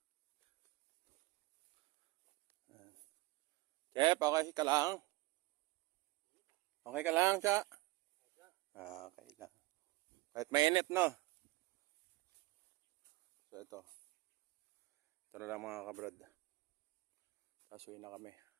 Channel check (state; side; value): quieter; left; 21.3 dB